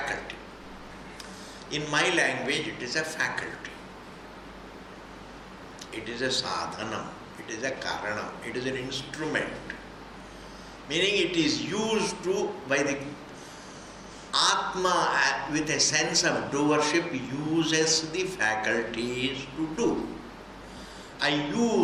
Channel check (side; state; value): both; identical; correlation 1.00